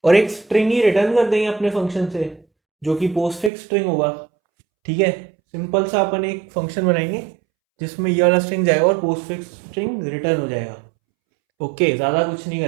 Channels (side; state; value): left; drops out; at 3.5 s